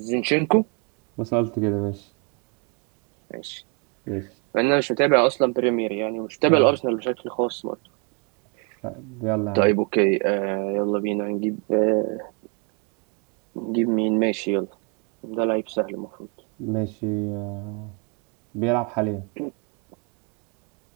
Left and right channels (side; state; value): left; quieter; 35.7 dB